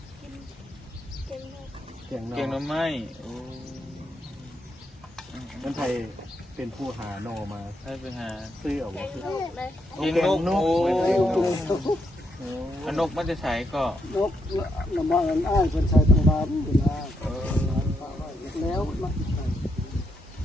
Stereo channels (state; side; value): normal; both; correlation 0.79